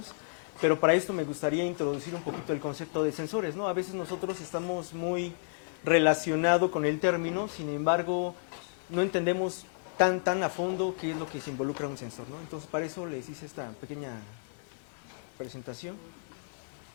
pero para esto me gustaría introducir un poquito el concepto de sensores, ¿no? A veces nosotros estamos muy relacionados con el término, sin embargo, no entendemos tan a fondo qué es lo que se involucra un sensor, ¿no? Entonces, para eso les hice esta pequeña presentación.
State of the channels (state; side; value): silent; right; 57 dB below the other